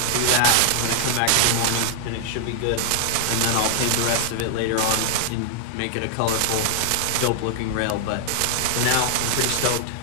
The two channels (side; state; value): both; different; correlation 0.00